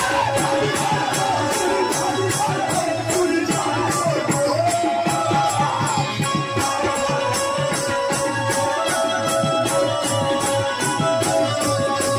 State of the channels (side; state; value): both; identical; correlation 1.00